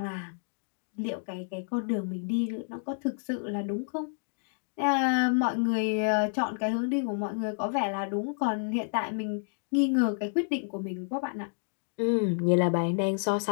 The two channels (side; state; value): right; silent; digital silence